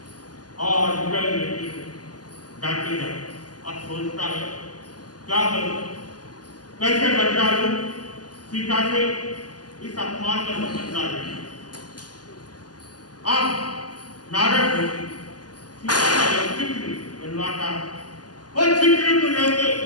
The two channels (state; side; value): late; right; 0.69 ms